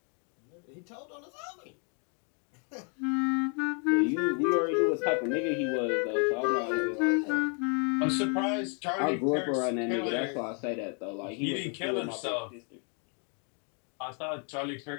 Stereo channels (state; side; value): quieter; right; 37.8 dB